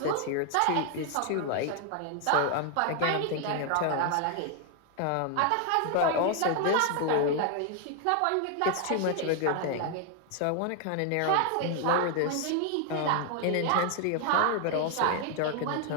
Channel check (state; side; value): different; both; correlation 0.00